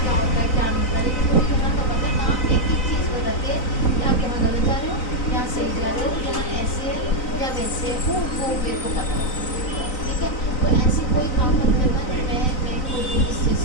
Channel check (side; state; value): right; late; 3.9 ms